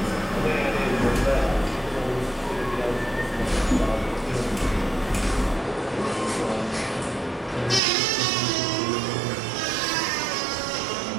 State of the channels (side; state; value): left; drops out; at 7.8 s